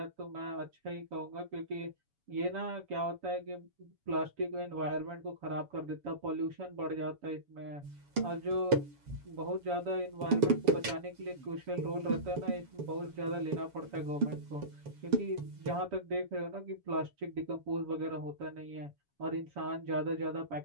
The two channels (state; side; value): late; left; 7.1 ms